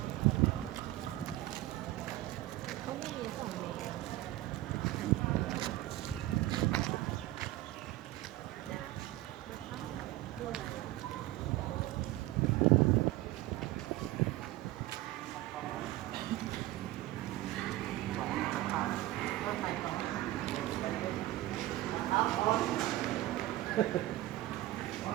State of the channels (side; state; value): left; quieter; 16.3 dB